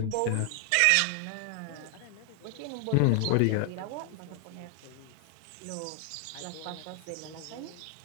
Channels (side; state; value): both; different; correlation 0.00